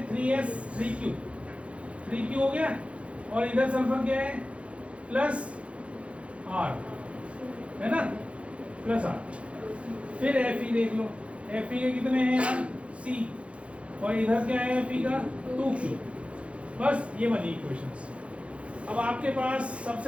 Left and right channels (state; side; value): late; left; 0.061 ms